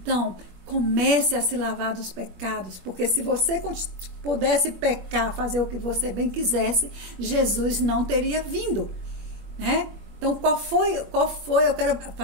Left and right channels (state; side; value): late; left; 21 ms